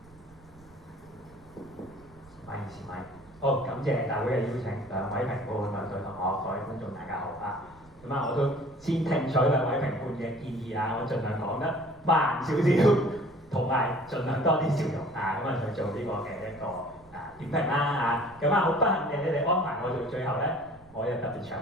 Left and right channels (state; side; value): noise; right; rumble, 25 dB below the sound